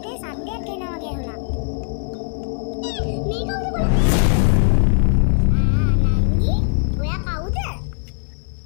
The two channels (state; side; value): silent; right; 58 dB below the other